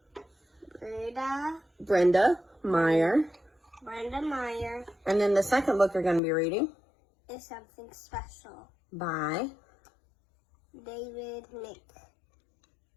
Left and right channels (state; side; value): drops out; right; at 6.2 s